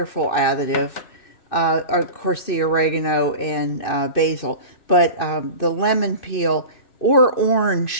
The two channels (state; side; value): late; right; 2.6 ms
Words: additive. Of course, the oregano and basil. But the lemon peel or